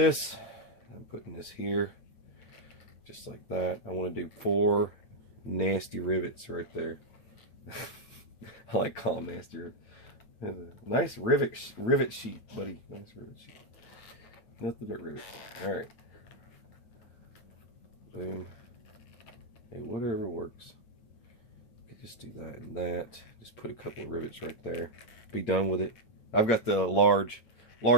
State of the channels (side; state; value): right; late; 8.8 ms